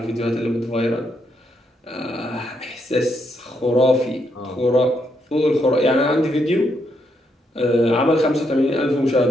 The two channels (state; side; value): normal; both; correlation 0.78